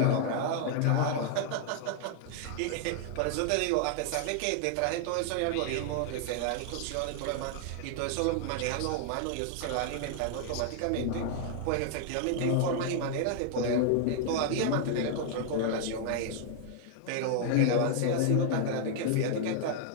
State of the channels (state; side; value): different; both; correlation -0.01